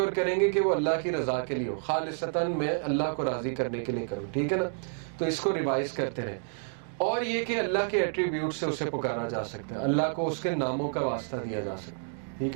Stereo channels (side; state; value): left; silent; digital silence